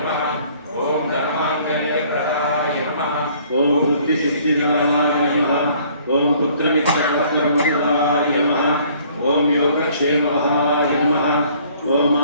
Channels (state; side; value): inverted; both; correlation -0.58